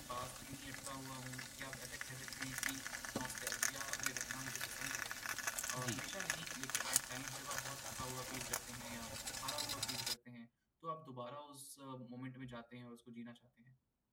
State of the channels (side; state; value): both; identical; correlation 1.00